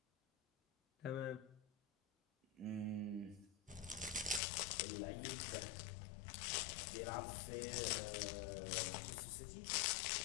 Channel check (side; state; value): right; drops out; at 4.4 s